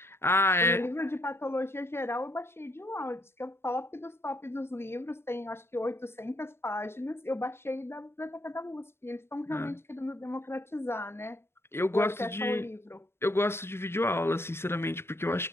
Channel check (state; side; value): late; right; 0.12 ms